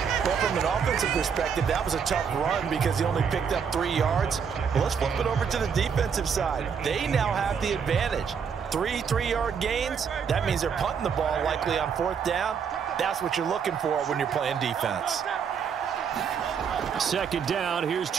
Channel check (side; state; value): left; quieter; 6.8 dB